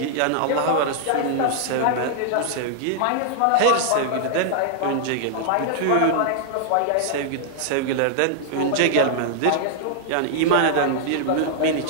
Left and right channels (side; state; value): both; different; correlation -0.01